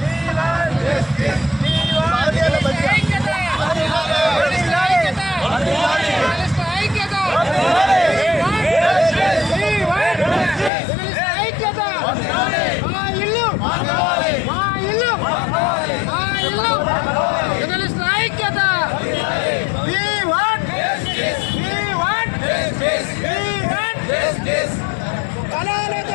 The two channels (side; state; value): right; drops out; at 10.7 s